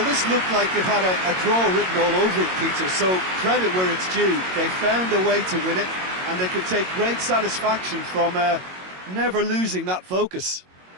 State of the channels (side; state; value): left; late; 22 ms